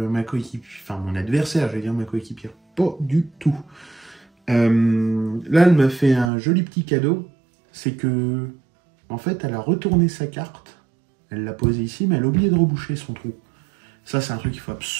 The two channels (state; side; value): drops out; left; at 6.3 s